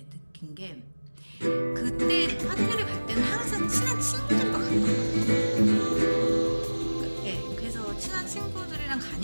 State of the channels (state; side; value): inverted; both; correlation -1.00